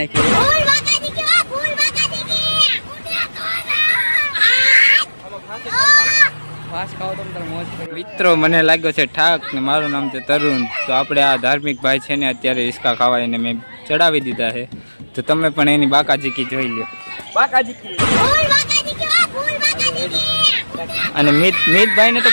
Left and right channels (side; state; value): both; inverted; correlation -1.00